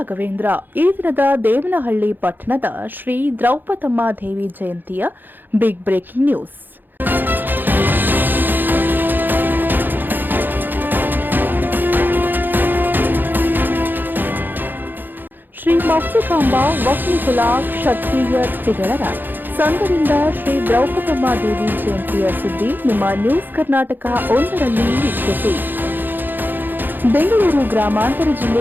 ಈ ದಿನದ ದೇವನಹಳ್ಳಿ ಪಟ್ಟಣದ ಶ್ರೀ ದ್ರೌಪದಮ್ಮ ದೇವಿ ಜಯಂತಿಯ ಬಿಗ್ ಬ್ರೇಕಿಂಗ್ ನ್ಯೂಸ್. ಶ್ರೀ ಮೌಕ್ತಿಕಾಂಬ ವಕ್ನಿಕುಲ ಕ್ಷತ್ರಿಯ ತಿಗಳರ ಸಂಘದಿಂದ ಶ್ರೀ ದ್ರೌಪದಮ್ಮ ದೇವಿ ಜಯಂತಿಯ ಸುದ್ದಿ ನಿಮ್ಮ ನ್ಯೂಸ್ ಕರ್ನಾಟಕ 1ರಲ್ಲಿ ವೀಕ್ಷಿಸಿ. ಬೆಂಗಳೂರು ಗ್ರಾಮಾಂತರ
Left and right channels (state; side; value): late; left; 0.091 ms